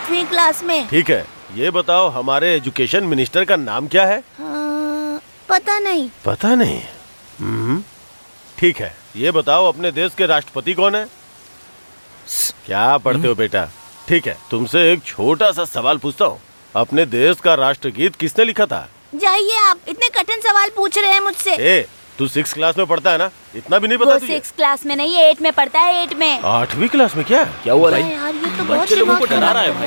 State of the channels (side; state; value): both; inverted; correlation -1.00